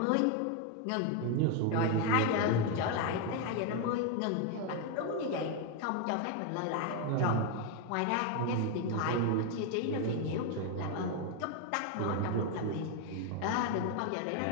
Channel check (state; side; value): different; both; correlation 0.01